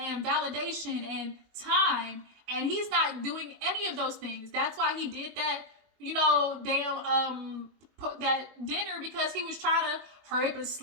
validation and time. And he's not doing any of those things. That's why he did that, that dinner, because he was trying to hurry up and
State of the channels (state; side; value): late; left; 21 ms